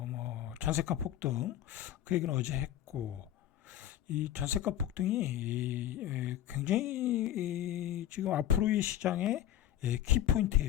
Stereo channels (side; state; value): right; quieter; 11.8 dB